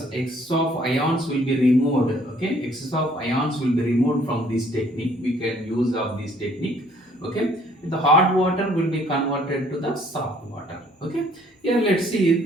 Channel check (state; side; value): normal; both; correlation 0.60